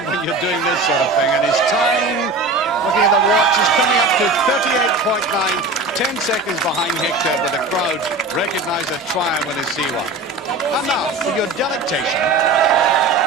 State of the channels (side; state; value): left; quieter; 3.3 dB